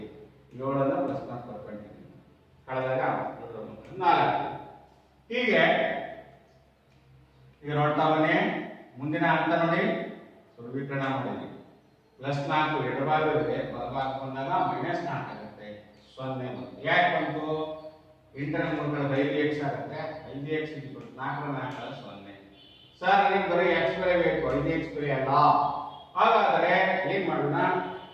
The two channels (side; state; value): both; identical; correlation 1.00